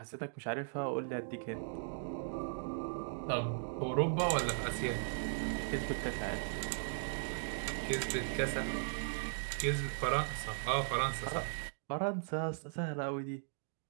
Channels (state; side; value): silent; left; digital silence